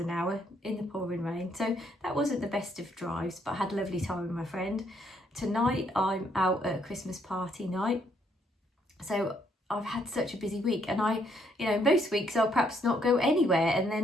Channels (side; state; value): both; normal; correlation 0.71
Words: hour in the pouring rain, so that wasn't the best of drives, but I had a lovely time with my friend. Tonight I'm out at a Christmas party night, so I've had such a busy week, and most weeks I'll perhaps not go anywhere, and